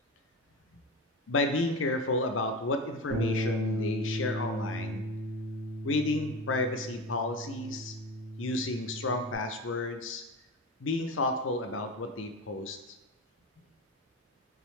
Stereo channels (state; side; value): normal; both; correlation 0.26